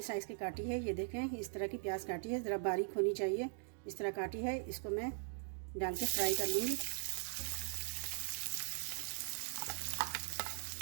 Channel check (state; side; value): silent; left; digital silence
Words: साइज़ की काटी है। ये देखें, इस तरह की प्याज काटी है, ज़रा बारीक होनी चाहिए, इस तरह काटी है। इसको मैं डाल के फ्राई कर लूँगी